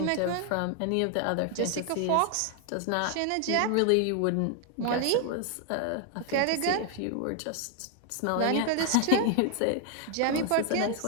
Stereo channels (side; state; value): both; different; correlation 0.00